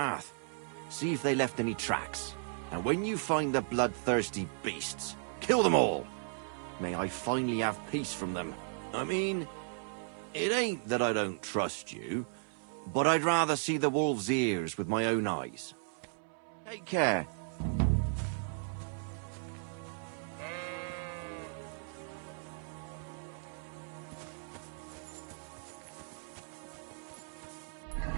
See if they left any tracks. And when you find the bloodthirsty beasts, kill them all. May I finally have peace from them. I mean, it ain't that I don't trust you, but I'd rather see the wolf's ears with my own eyes. Take care.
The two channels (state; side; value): silent; left; 54 dB below the other